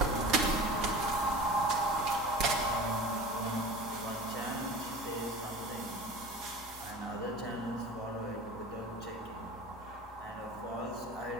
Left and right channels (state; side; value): normal; both; correlation 0.36